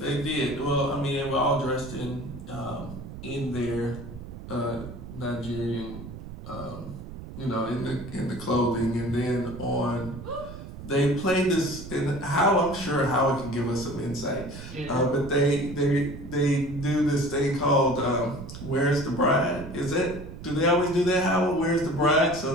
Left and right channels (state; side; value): noise; right; rumble, 12 dB below the sound